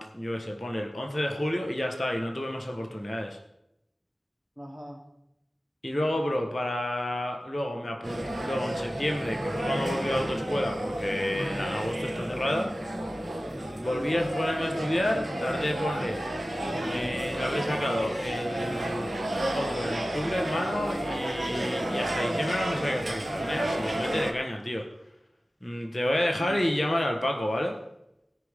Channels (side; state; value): both; normal; correlation 0.95